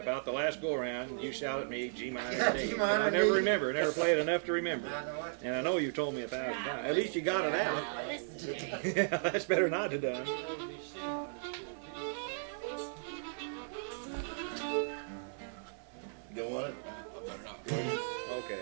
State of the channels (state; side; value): silent; left; 54 dB below the other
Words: about the last go around, you shout at me G minor. Yeah, and D. G minor I and never D. remember, never played enough to remember. I know it. And I know you've told me 1,000 times. At least you got it out. Yeah, that's better not to done. You know, these C minors to a D. You want it? Okay,